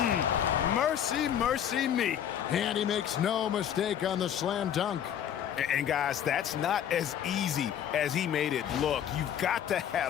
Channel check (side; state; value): right; quieter; 9.6 dB